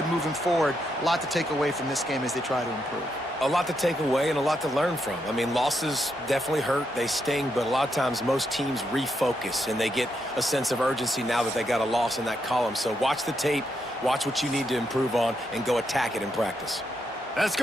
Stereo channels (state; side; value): normal; both; correlation 0.81